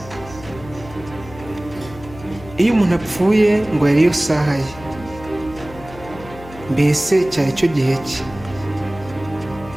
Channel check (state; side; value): noise; left; hum, 17 dB below the sound